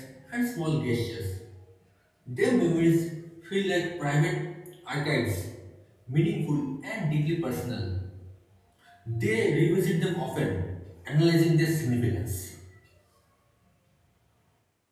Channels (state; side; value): identical; both; correlation 1.00